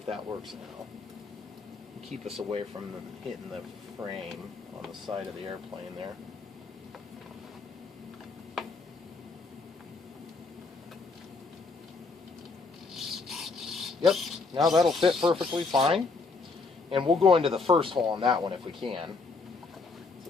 that works now. Keep us away from hitting the frame on the side of the airplane there. Yep, now that'll fit perfectly fine. And we'll go into the first hole on that one if we can. So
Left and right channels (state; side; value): quieter; right; 4.1 dB